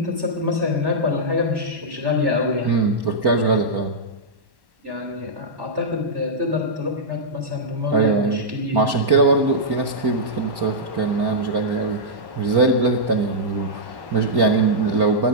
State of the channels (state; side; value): late; left; 1.1 ms